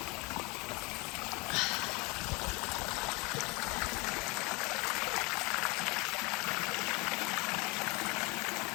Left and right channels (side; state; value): right; quieter; 27.0 dB